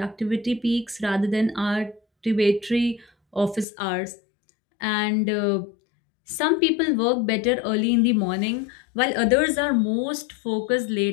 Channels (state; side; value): drops out; right; at 3.7 s